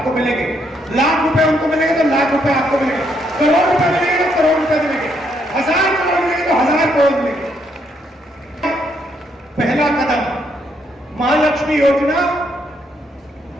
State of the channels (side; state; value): both; normal; correlation 0.74